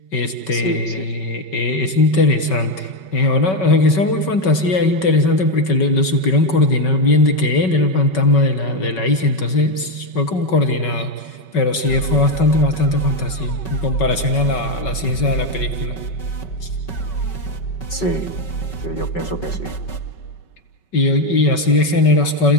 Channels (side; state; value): right; late; 5.3 ms